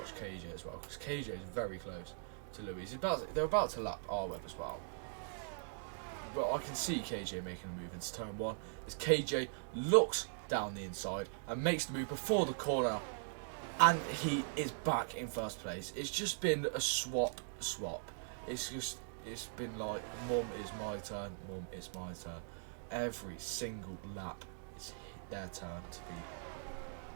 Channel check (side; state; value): left; silent; digital silence